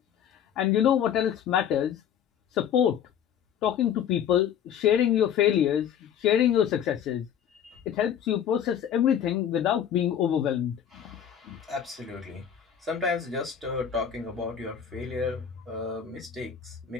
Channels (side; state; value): right; quieter; 9.0 dB